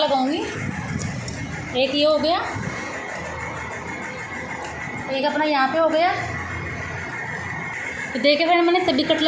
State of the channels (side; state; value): both; identical; correlation 1.00